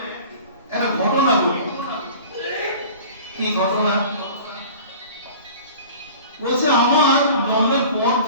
একটা ঘটনা বলি। কি ঘটনা? বলছে আমার জন্মের পর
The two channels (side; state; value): both; inverted; correlation -0.42